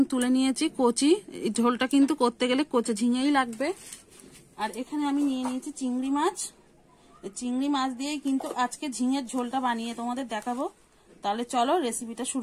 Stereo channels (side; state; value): both; identical; correlation 1.00